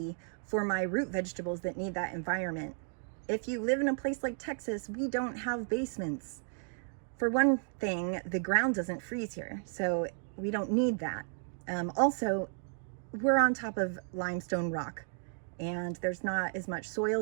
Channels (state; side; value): silent; left; 55 dB below the other